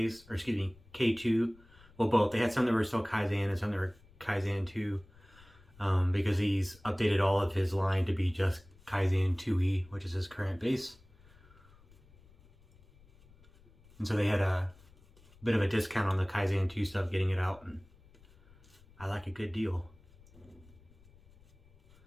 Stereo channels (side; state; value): left; noise; rumble, 26 dB below the sound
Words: or excuse me, K2. Well, both. They had some that were still Kaizen and some that were Kaizen 2, because he's updated all of his line to be just Kaizen 2E, which is his current base. And so they had a bit of a discount on the Kaizen 2 stuff, getting it out, and I like a good deal.